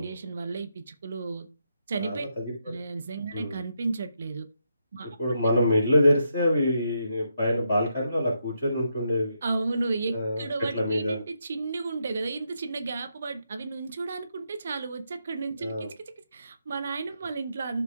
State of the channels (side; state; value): both; inverted; correlation -0.80